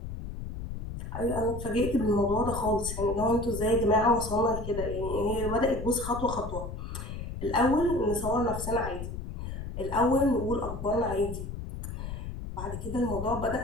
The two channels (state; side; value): noise; left; rumble, 7 dB below the sound